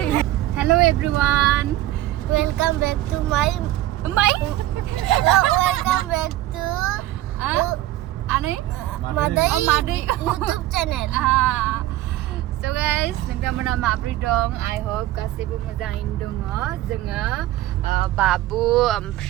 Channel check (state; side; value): quieter; left; 15.2 dB